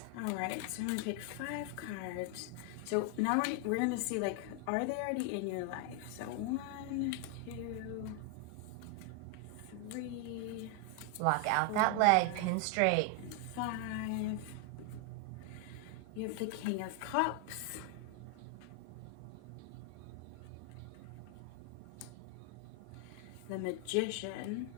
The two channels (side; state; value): both; different; correlation 0.01